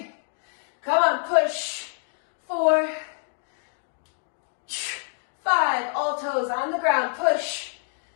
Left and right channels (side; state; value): right; silent; 61 dB below the other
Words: Come on, push. 4, 5, all toes on the ground, push.